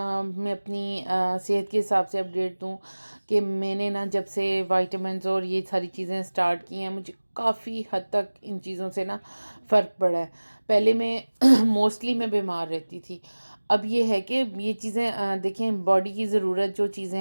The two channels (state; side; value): inverted; both; correlation -1.00